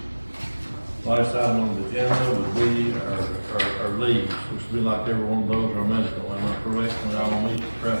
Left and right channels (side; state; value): both; inverted; correlation -1.00